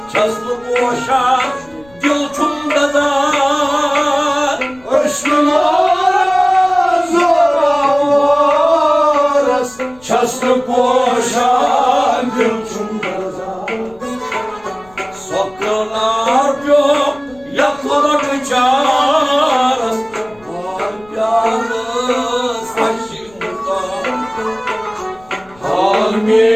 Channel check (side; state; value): left; noise; rumble, 27 dB below the sound